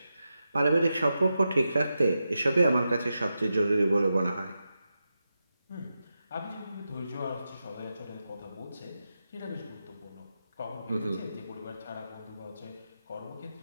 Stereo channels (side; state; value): both; inverted; correlation -0.89